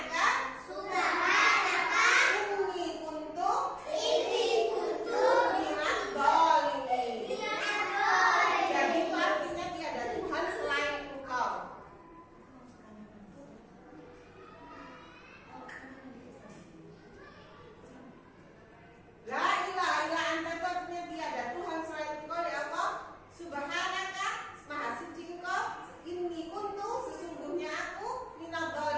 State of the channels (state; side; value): identical; both; correlation 1.00